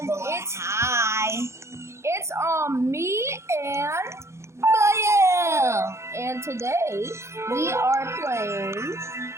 Hi. it's me and and today we are playing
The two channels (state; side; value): late; left; 0.13 ms